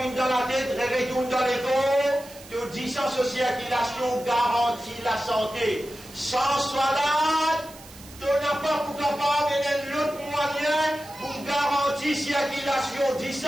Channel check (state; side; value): noise; right; hiss, 19 dB below the sound